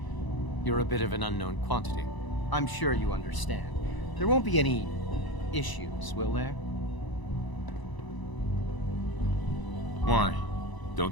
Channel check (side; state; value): right; late; 1.0 ms